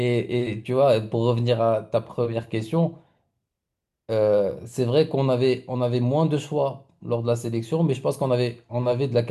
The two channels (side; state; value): both; identical; correlation 1.00